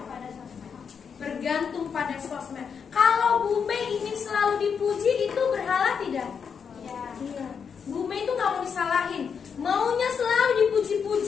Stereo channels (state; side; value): quieter; right; 6.6 dB